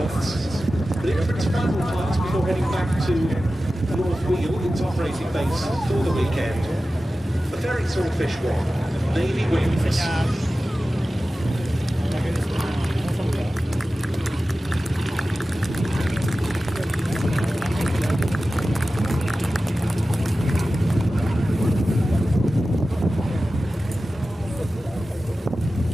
But in for its final flight before heading back to North Wheel, its operating base for the weekend, the ferry Swordfish 1, Navy wings.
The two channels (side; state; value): both; normal; correlation 0.95